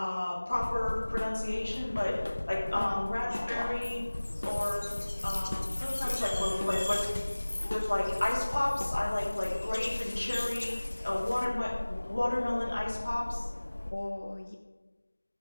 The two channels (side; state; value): both; inverted; correlation -1.00